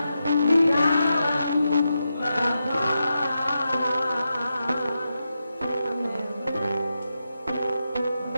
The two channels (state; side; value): inverted; both; correlation -0.88